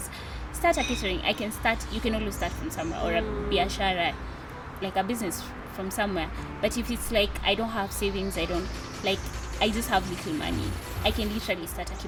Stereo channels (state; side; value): identical; both; correlation 1.00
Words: Start a catering, I can start. You can always start from somewhere, or a biashara, like a business from somewhere. But if it's like I don't have savings, I just have little money, I can literally start a